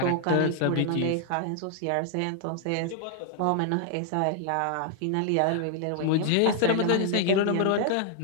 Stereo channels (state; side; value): different; both; correlation 0.00